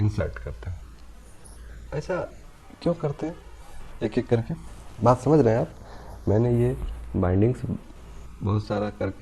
करते हैं। ऐसा क्यों करते हैं, एक एक करके बात समझ रहे हैं आप। मैंने ये बाइंडिंग्स बहुत सारा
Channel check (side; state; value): both; identical; correlation 1.00